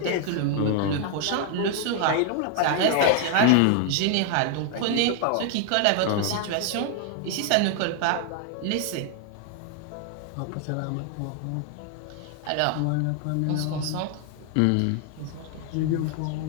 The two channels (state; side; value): different; both; correlation 0.00